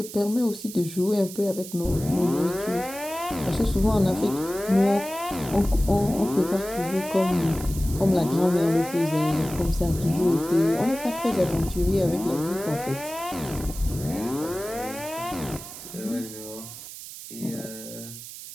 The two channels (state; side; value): noise; right; hiss, 12 dB below the sound